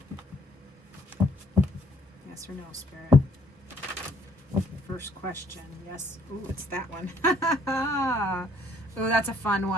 Yes or no, Spirit? First question. Yes. Ooh, it's that one. Ooh, that's a fun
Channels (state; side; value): normal; both; correlation 0.64